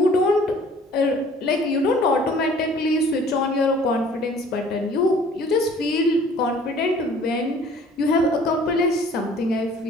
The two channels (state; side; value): normal; both; correlation 0.53